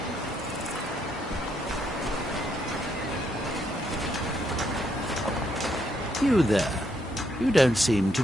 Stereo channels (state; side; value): normal; both; correlation 0.75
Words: You there. You don't seem to